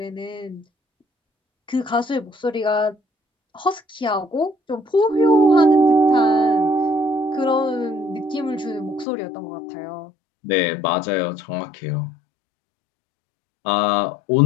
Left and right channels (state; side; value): drops out; right; at 9.1 s